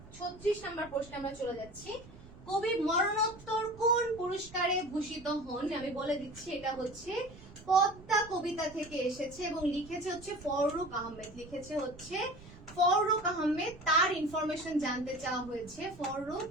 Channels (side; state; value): right; noise; rumble, 19 dB below the sound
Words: 36 নাম্বার প্রশ্নে আমরা চলে যাচ্ছি। কবি মরণোত্তর কোন পুরস্কারে ভূষিত হন? আমি বলে দিচ্ছি, এটা হচ্ছে পদ্মা কবিতা থেকে এসেছে এবং লিখেছে হচ্ছে ফররুখ আহমেদ। তার ইনফরমেশন জানতে চাওয়া